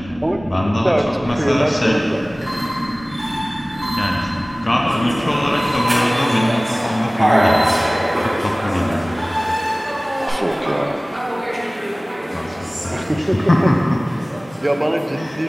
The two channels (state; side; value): normal; both; correlation 0.98